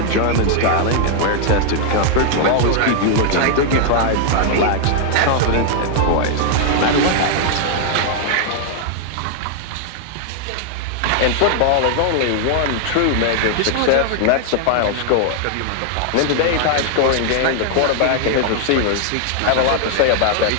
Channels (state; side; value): different; both; correlation 0.00